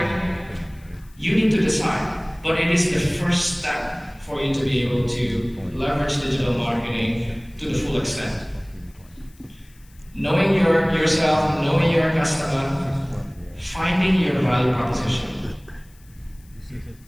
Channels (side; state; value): left; noise; hiss, 29 dB below the sound